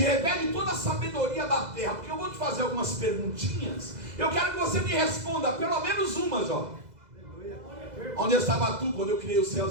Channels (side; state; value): left; late; 2.0 ms